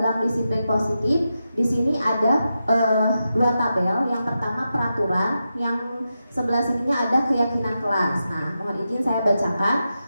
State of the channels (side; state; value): both; inverted; correlation -0.88